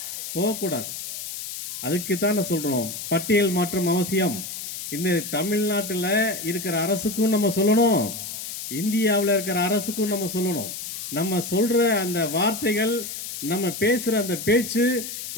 போகக்கூடாது. அதுக்கு தான் நான் சொல்கிறோம், பட்டியல் மாற்றம் அவசியம். இந்த தமிழ்நாட்டில் இருக்கிற அரசுக்கும் நம்ம சொல்லணும், இந்தியாவில் இருக்கிற அரசுக்கும் நம்ம சொல்லணும். நம்ம சொல்கிற அந்த வார்த்தைகள், நம்ம பேசுகிற அந்த பேச்சு,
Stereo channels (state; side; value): noise; left; hiss, 8 dB below the sound